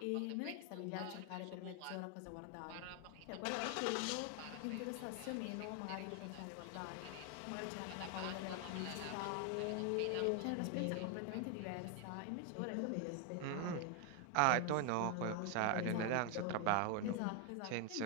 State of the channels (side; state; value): both; different; correlation 0.01